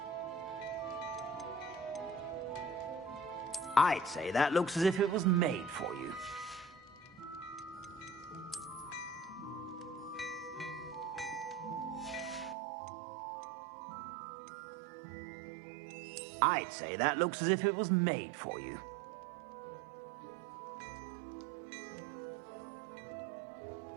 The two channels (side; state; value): left; drops out; at 12.6 s